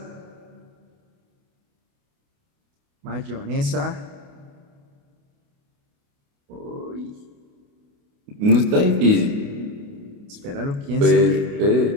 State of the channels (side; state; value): left; late; 28 ms